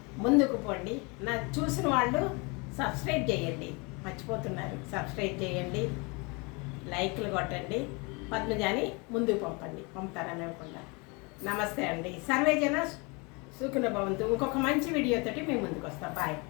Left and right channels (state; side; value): quieter; right; 29.4 dB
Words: ముందుకు పోండి. నా చూసిన వాళ్ళు సబ్స్క్రైబ్ చేయండి, మర్చిపోతున్నారు. సబ్స్క్రైబ్ చేయండి, లైక్లు కొట్టండి, పద్మజాని ముందుకు పంపుతారని అనుకుంటా. నమస్తే అండి. సర్వేజన సుఖినో భవంతు. ఇంకొక మంచి వీడియోతోటి మేము ముందుకు వస్తాం. బాయ్.